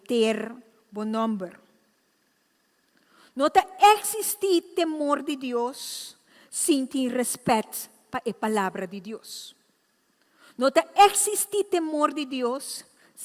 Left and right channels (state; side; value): identical; both; correlation 1.00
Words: bom nome. Não existe temor de Deus sem ter respeito para a palavra de Deus. Não existe temor de Deus